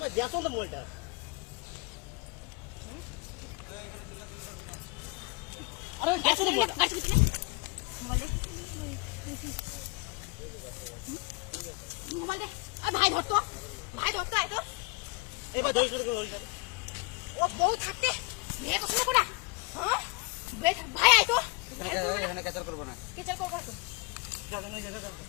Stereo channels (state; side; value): quieter; right; 28.0 dB